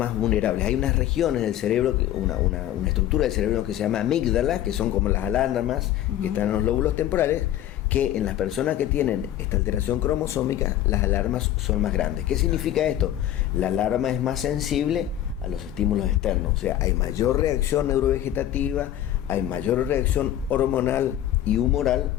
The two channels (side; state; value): right; quieter; 12.3 dB